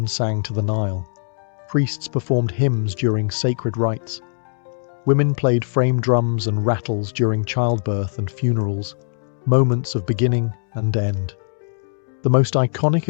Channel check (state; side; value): silent; right; 62 dB below the other